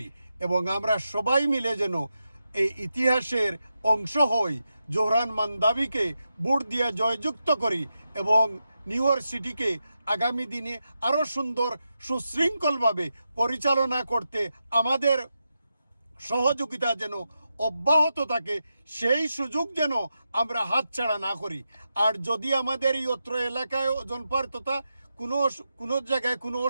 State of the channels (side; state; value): both; inverted; correlation -0.88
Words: এবং আমরা সবাই মিলে যেন এই ইতিহাসের অংশ হই, জোহরান মান্দাবিকে ভোট দিয়ে জয়যুক্ত করি এবং নিউ ইয়র্ক সিটিকে আগামী দিনে আরও সুন্দর সুশৃঙ্খলভাবে পরিচালনা করতে আমাদের সহযোগিতা যেন অব্যাহত থাকে, সেই সুযোগ যেন আমরা হাতছাড়া না করি। আর যদি আমাদের এই অত্র এলাকায় জনপার তথা কোনো জায়গায় কোনো